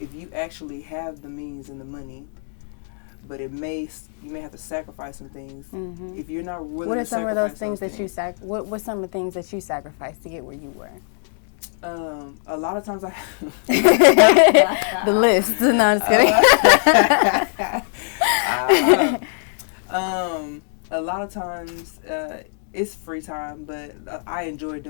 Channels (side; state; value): right; silent; digital silence